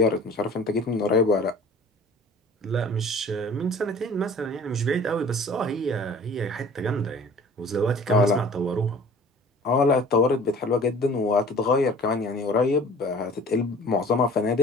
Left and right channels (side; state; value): both; normal; correlation 0.47